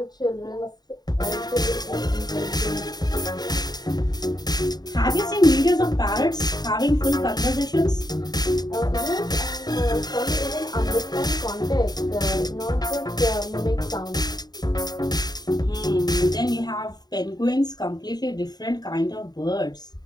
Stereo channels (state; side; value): late; right; 0.20 ms